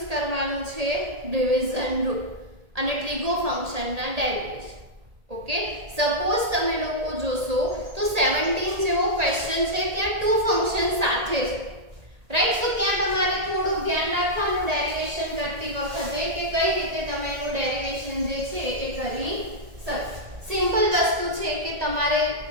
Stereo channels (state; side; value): late; left; 1.8 ms